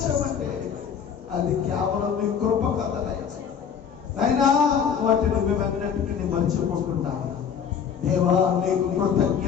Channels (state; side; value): quieter; right; 7.4 dB